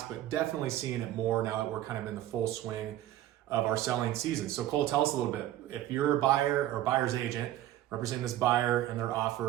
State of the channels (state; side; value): quieter; left; 13.5 dB